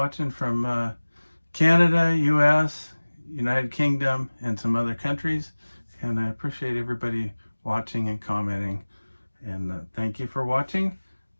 from Canada, US, United Kingdom, and some other countries, and I appreciate everybody watching and commenting. And thank you for watching.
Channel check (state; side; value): inverted; both; correlation -1.00